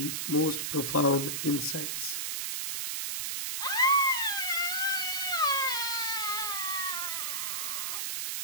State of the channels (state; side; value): noise; right; hiss, 2 dB below the sound